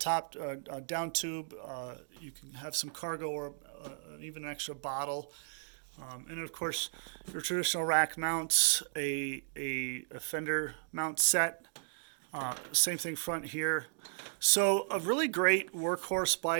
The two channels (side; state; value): left; silent; digital silence